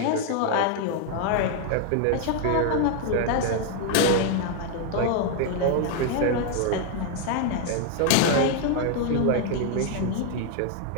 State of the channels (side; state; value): both; different; correlation 0.00